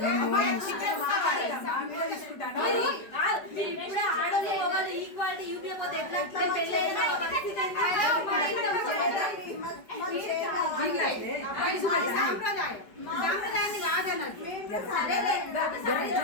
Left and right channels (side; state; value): right; late; 5.1 ms